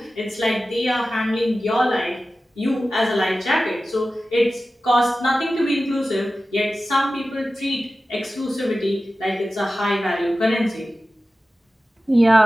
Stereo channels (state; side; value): normal; both; correlation 0.95